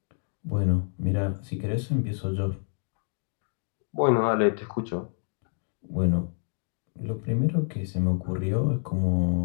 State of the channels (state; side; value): silent; right; 59 dB below the other